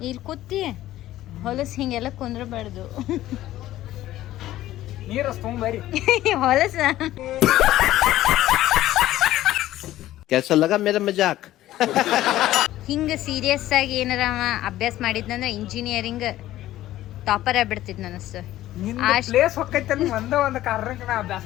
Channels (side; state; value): right; quieter; 14.5 dB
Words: ಇಲ್ಲಿ ಕೂತಿ ಹೊಲಸು ಹಿಂಗೆಲ್ಲ ಕುಂದ್ರಬಾರ್ದು. ನೀರು ತುಂಬರಿ ಹೊಲಸ. कैसा लगा मेरा मजाक? ಹಿಂಗೆ ಸೀರಿಯಸ್ ಆಗಿ ಏನಾರ ಅಭ್ಯಾಸ ಮಾಡಿದ್ನಂದ್ರೆ ಇಂಜಿನಿಯರಿಂಗ್ ಟಾಪರ್ ಆಗ್ಬಿಡ್ತಿದ್ ನನಸ್ತು. ಪ್ಲೇಸ್ ಹೊಕ್ಕೈತೆ ಒಂದು ಕಾರಣಕ್ಕೆ ನಾ ಅಭ್ಯಾಸ